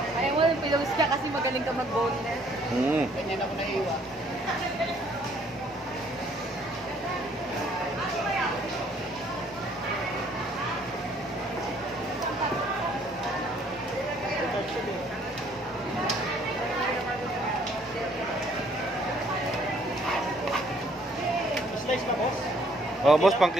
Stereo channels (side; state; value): both; normal; correlation 0.62